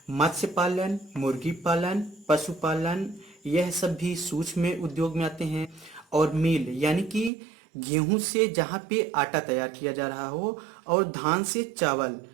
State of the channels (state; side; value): drops out; left; at 7.3 s